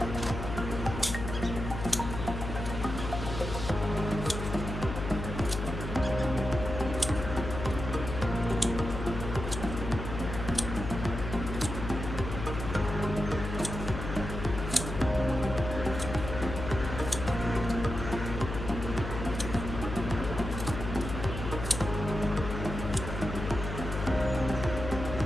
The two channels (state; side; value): noise; left; hum, 6 dB below the sound